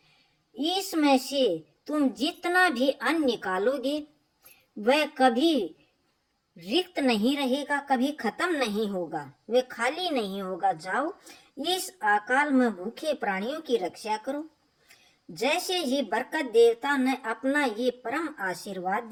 इसमें से तुम जितना भी अन्न निकालोगे वह कभी रिक्त नहीं रहेगा, कभी खत्म नहीं होगा, वे खाली नहीं होगा। जाओ, इस अकाल में भूखे प्राणियों की रक्षा करो। जैसे ही बरकत देवता ने अपना ये परम आशीर्वाद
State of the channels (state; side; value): identical; both; correlation 1.00